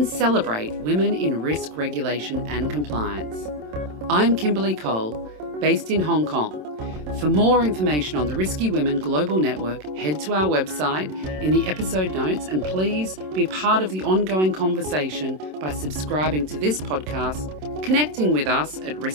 celebrate women in risk regulation and compliance. I'm Kimberly Cole, based in Hong Kong. For more information on the Risky Women Global Network, head to our website in the episode notes, and please be part of the ongoing conversation by subscribing to this podcast, connecting with us at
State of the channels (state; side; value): late; left; 27 ms